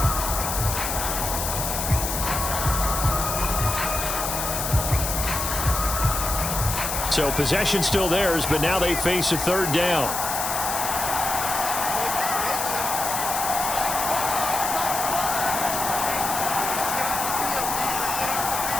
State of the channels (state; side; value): noise; left; hiss, 3 dB below the sound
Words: So possession still theirs, but now they face a third down.